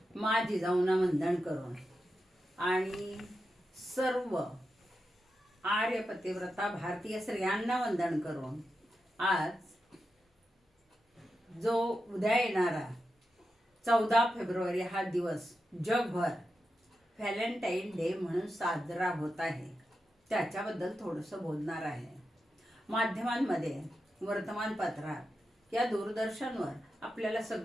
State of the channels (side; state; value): both; normal; correlation 0.89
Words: मा जिजाऊंना वंदन करून आणि सर्व आर्य पतिव्रता भारतीय स्त्रियांना वंदन करून आज जो उद्या येणारा 14 फेब्रुवारी हा दिवस जगभर व्हॅलेंटाईन डे म्हणून साजरा होत आहे, त्याच्याबद्दल थोडंसं बोलणार आहे. माध्यमांमध्ये, वर्तमानपत्रात या दूरदर्शनवर आपल्याला